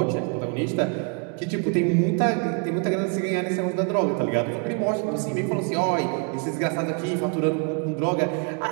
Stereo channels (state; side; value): quieter; left; 37.8 dB